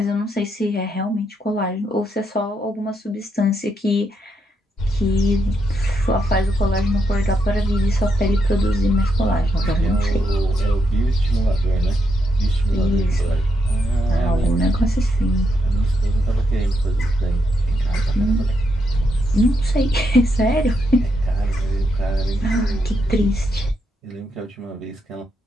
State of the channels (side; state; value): both; normal; correlation 0.80